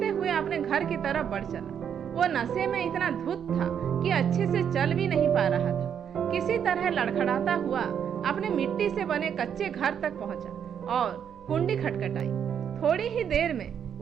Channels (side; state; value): left; quieter; 8.3 dB